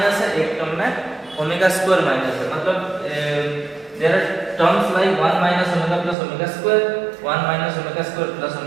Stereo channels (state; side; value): drops out; left; at 6.2 s